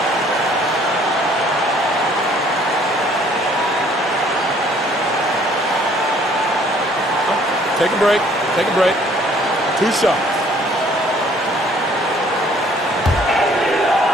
Take a break. Take a break. 2 shots.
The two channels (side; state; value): both; normal; correlation 0.59